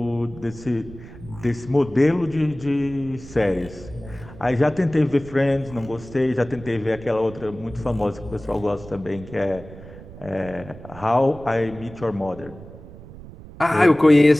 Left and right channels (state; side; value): noise; right; rumble, 17 dB below the sound